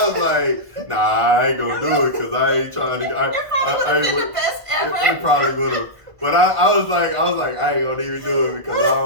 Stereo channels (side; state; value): left; late; 1.5 ms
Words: was like, nah, I ain't gonna do it because I ain't trying to. It probably would have been the best ever. It probably would have. But I was like, I ain't gonna even do it because I